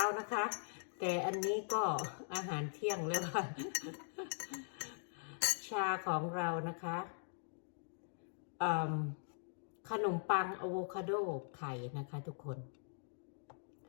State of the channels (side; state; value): right; silent; digital silence